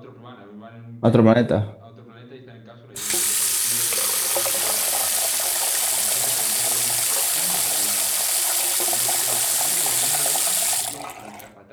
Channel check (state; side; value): identical; both; correlation 1.00